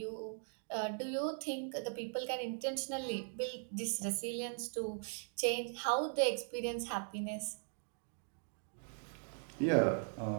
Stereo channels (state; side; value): silent; left; 51 dB below the other